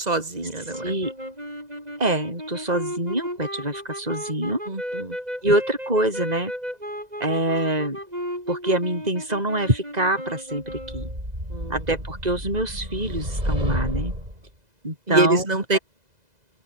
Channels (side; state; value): left; late; 2.0 ms